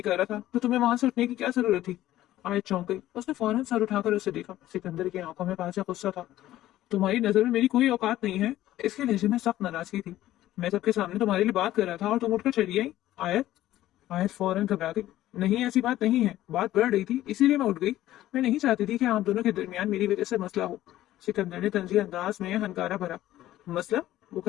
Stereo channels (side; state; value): right; quieter; 14.3 dB